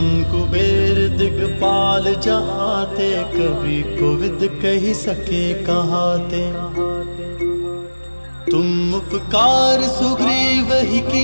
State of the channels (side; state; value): both; inverted; correlation -1.00